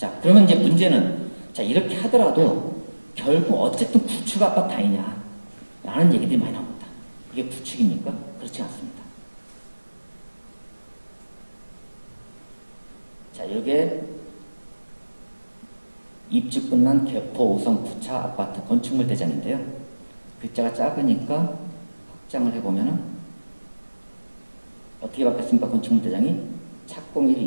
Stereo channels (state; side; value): inverted; both; correlation -1.00